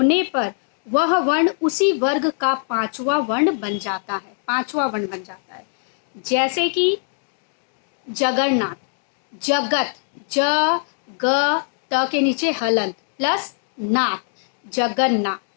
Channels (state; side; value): silent; right; 64 dB below the other